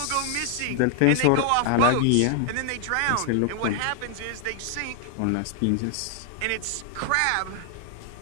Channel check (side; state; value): both; different; correlation 0.00